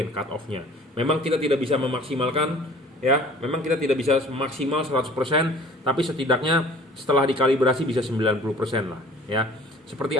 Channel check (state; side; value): normal; both; correlation 0.49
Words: cut off-nya. Memang kita tidak bisa memaksimalkan ya, memang kita tidak bisa maksimal 100%, tapi setidaknya setelah dikalibrasi bisa 90% lah ya. Seperti